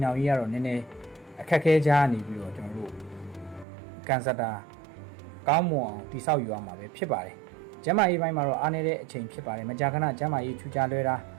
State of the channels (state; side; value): drops out; left; at 3.7 s